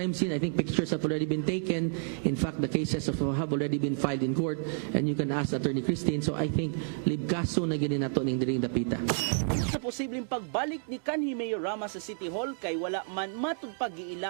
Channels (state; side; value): silent; left; digital silence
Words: scene. I think pictures have already been taken. In fact, the cases have already been filed in court and you can ask Attorney Christine. So I think libkaso na ginin nato ning diring dapita. Sa posibleng pagbalik ni kanhi Mayor Rama sa City Hall kay wala man